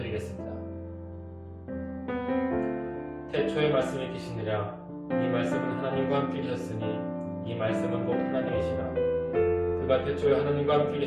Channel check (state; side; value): identical; both; correlation 1.00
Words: 태초에 말씀이 계시느라 이 말씀은 하나님과 함께 계셨으니 이 말씀은 곧 하나님이시라. 그가 태초에 하나님과 함께